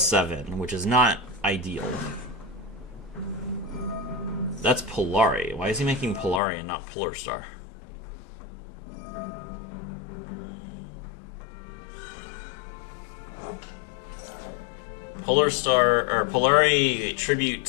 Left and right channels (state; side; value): drops out; right; at 6.4 s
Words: which is not ideal. That's Polari. Why is he making Polari and not Polar Star? Polar Star, or Polari